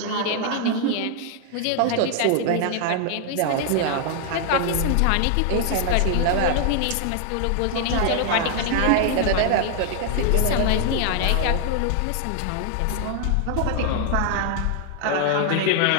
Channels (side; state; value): both; different; correlation 0.00